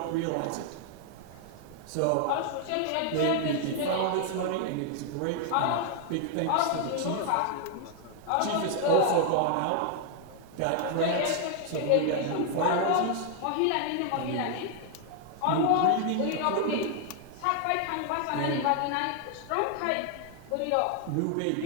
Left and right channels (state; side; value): different; both; correlation 0.00